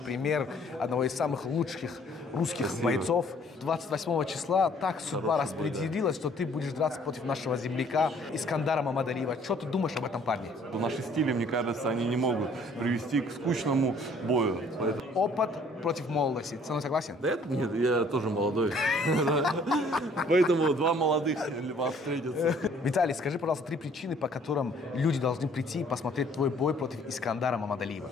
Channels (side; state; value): both; normal; correlation 0.58